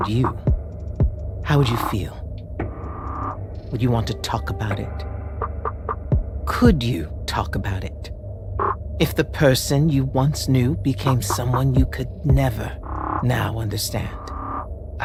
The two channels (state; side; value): identical; both; correlation 1.00